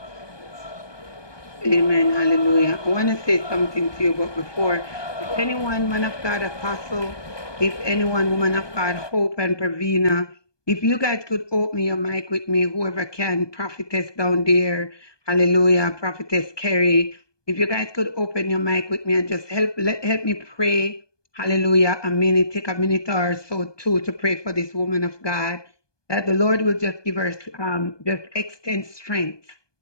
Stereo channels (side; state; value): right; late; 1.2 ms